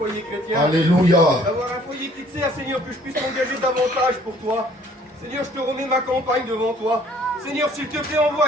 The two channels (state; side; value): normal; both; correlation 0.58